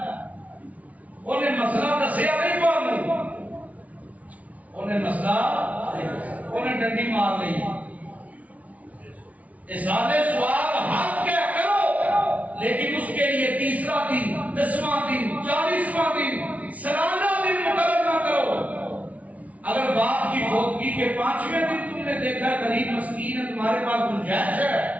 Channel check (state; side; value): late; left; 0.069 ms